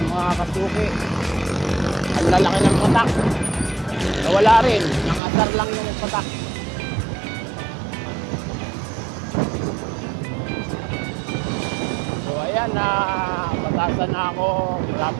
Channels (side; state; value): left; drops out; at 5.2 s